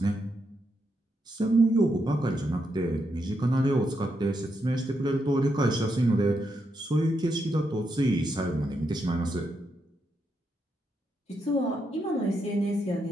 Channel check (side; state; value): both; normal; correlation 0.82